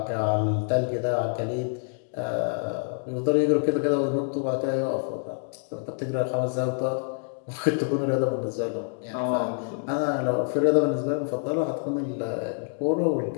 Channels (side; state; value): right; silent; 60 dB below the other